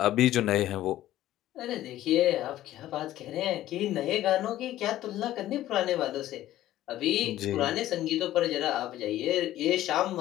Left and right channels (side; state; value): right; quieter; 14.0 dB